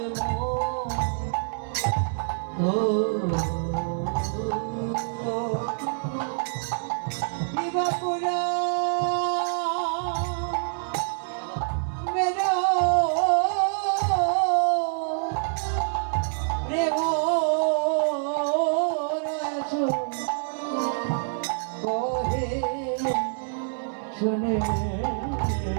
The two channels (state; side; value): silent; left; 61 dB below the other